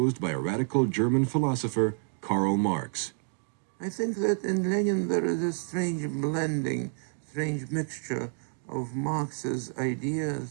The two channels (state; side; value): silent; left; 58 dB below the other